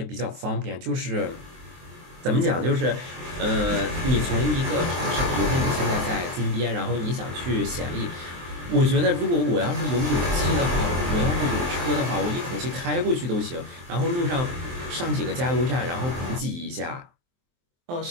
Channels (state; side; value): late; left; 23 ms